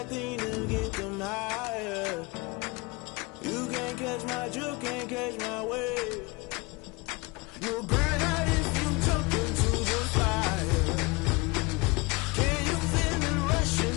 thing to get them higher. You can't catch my drift, can't catch my wave. You're burning out in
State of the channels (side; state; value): right; quieter; 25.7 dB